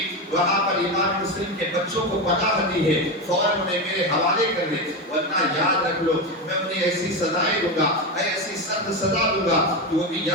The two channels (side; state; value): both; normal; correlation 0.16